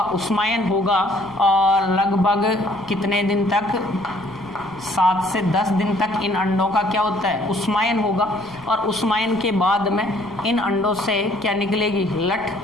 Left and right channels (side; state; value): left; noise; rumble, 25 dB below the sound